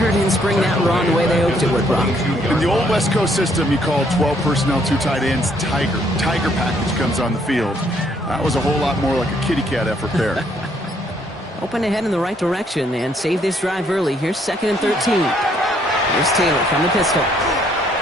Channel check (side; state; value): both; normal; correlation 0.68